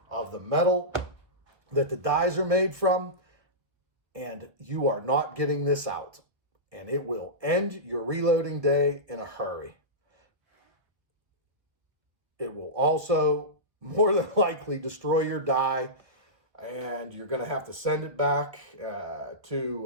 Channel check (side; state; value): left; late; 1.3 ms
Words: of the metal that the dies are made from, and you are not getting this out. And it will end your reloading day in a hurry. It will also more than likely destroy your die, and you're going to have to send it back